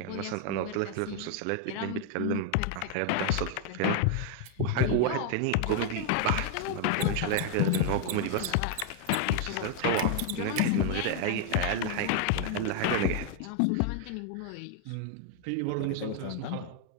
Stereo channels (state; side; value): different; both; correlation 0.00